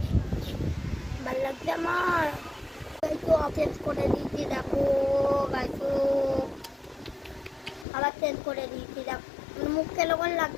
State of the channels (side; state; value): right; drops out; at 7.9 s